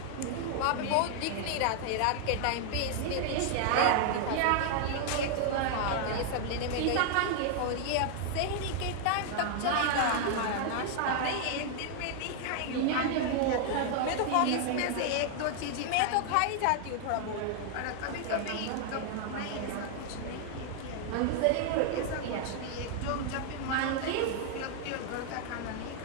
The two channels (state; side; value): different; both; correlation 0.00